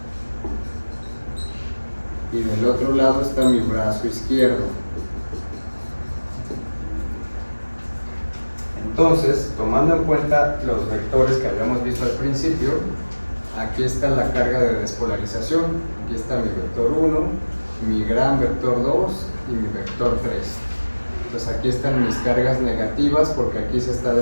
y del otro lado está mi brazo izquierdo. Entonces, tomando en cuenta los vectores que habíamos visto al principio, aquí está la carga de despolarización. Aquí está mi vector 1, mi gran vector 2 y mi vector 3. Entonces aquí están mis cargas negativas porque aquí se está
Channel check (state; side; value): inverted; both; correlation -1.00